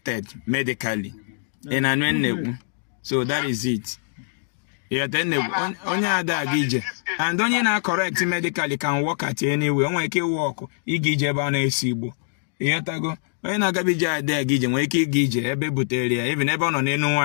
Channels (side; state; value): right; silent; digital silence